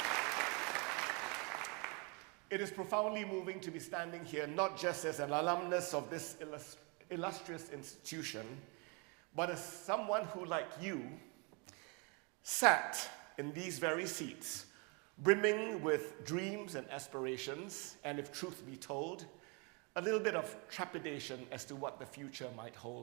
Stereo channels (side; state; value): left; quieter; 32.1 dB